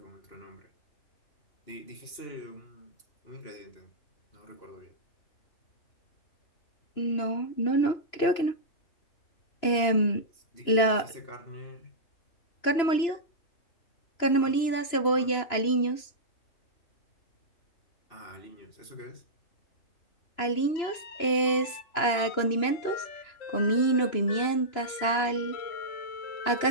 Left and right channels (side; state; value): right; late; 3.0 ms